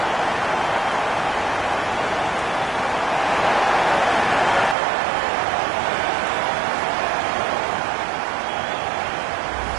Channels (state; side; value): drops out; left; at 4.8 s